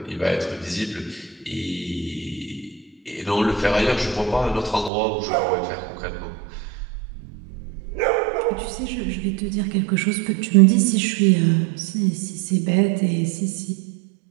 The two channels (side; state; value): left; drops out; at 4.9 s